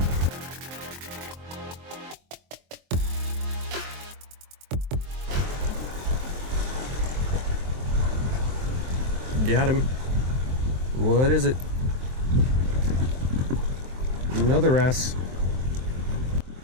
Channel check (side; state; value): left; late; 23 ms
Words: Got him. What is it? Another wrasse.